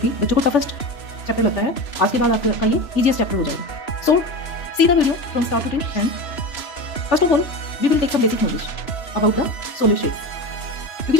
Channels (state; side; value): late; right; 3.0 ms